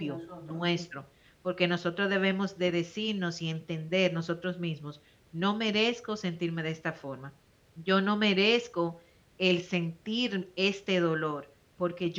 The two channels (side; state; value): both; identical; correlation 1.00